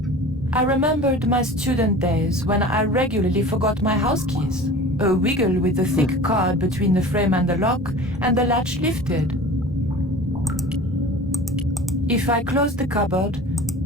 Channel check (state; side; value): normal; both; correlation 0.39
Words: I remembered my student days when I regularly forgot my house keys. A wiggle with the thick cord between the frame and the lock, and the latch lifted. If I closed the cupboard,